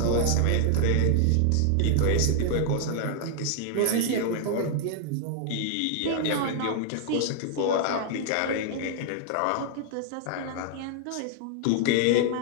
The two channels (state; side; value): different; both; correlation 0.00